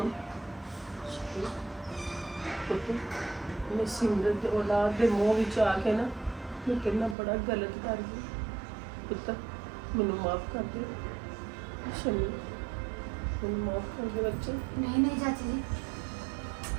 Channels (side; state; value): left; drops out; at 7.2 s